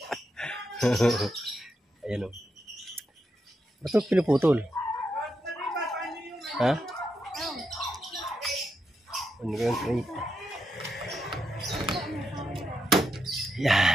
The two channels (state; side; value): normal; both; correlation 0.83